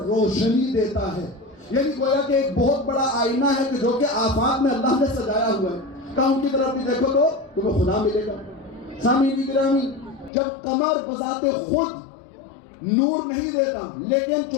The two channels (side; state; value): right; drops out; at 10.3 s